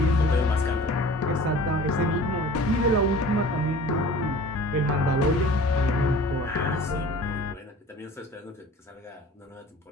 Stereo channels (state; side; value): normal; both; correlation 0.44